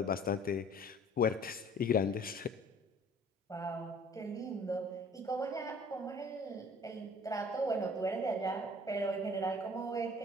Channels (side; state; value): both; normal; correlation 0.51